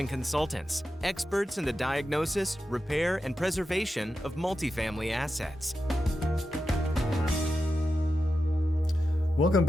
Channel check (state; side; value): normal; both; correlation 0.90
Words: Consultants, experts in the diagnosis, repair, and preservation of multifamily assets. Welcome